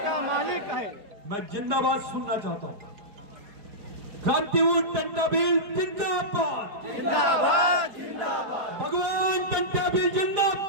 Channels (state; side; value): late; left; 4.9 ms